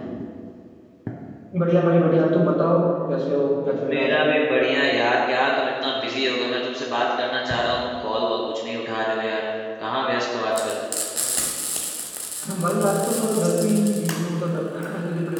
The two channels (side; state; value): both; identical; correlation 1.00